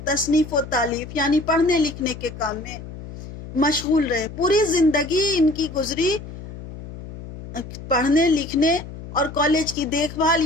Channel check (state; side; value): noise; left; hum, 13 dB below the sound